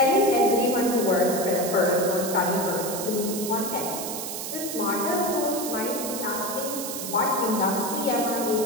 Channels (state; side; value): noise; right; hiss, 6 dB below the sound